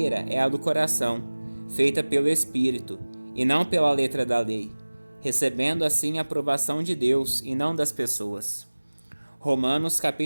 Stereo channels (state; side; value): inverted; both; correlation -1.00